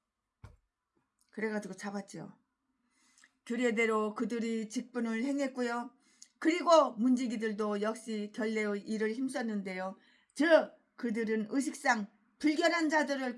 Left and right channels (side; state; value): both; identical; correlation 1.00